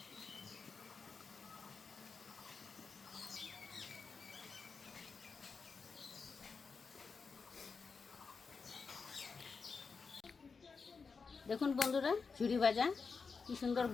দেখুন বন্ধুরা, ঝুরি ভাজা কি সুন্দর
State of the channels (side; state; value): right; quieter; 5.0 dB